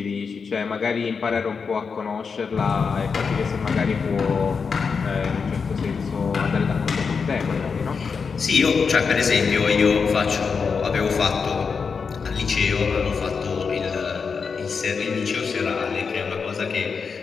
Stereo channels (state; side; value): quieter; right; 5.5 dB